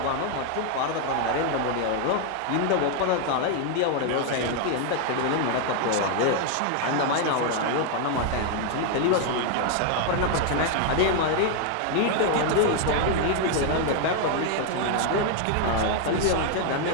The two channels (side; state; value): both; different; correlation 0.00